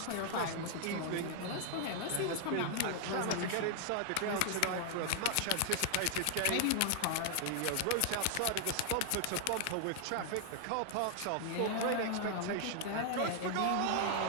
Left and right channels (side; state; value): both; different; correlation 0.00